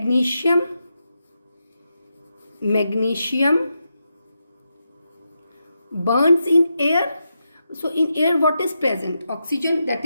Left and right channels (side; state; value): both; inverted; correlation -0.86